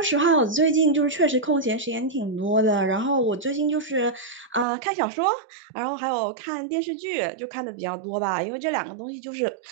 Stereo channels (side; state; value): left; drops out; at 4.7 s